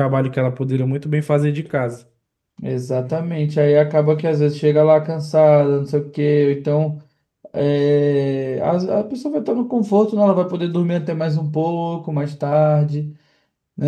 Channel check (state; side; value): identical; both; correlation 1.00